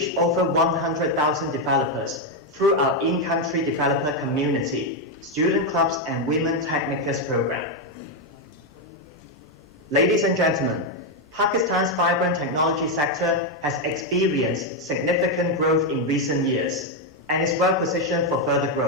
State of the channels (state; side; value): normal; both; correlation 0.03